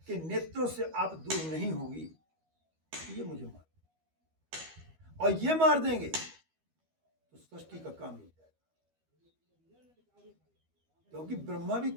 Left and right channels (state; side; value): late; left; 12 ms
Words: के नेत्रों से आप दूर नहीं होगी तो ये मुझे मार, और ये मार देंगे तो सृष्टि का काम मिल जाएगा। क्योंकि ब्रह्मा भी